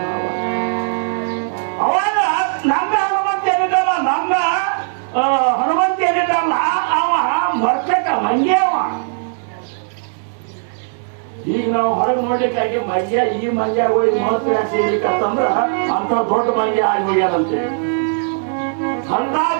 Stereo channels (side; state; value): left; silent; 67 dB below the other